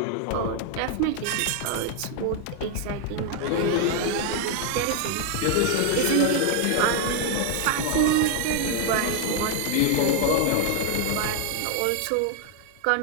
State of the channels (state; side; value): different; both; correlation 0.00